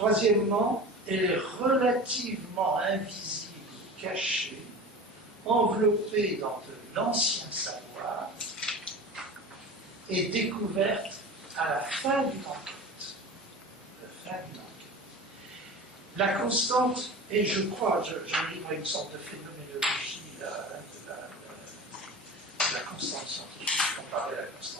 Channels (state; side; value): normal; both; correlation 0.34